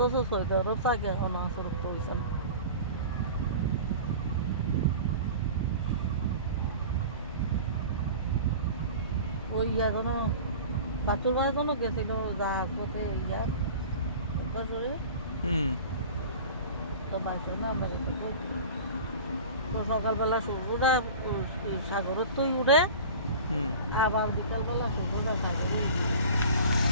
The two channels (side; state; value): both; inverted; correlation -0.38